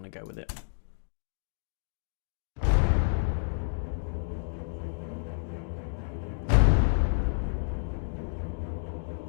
to go with it.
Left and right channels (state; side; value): silent; right; digital silence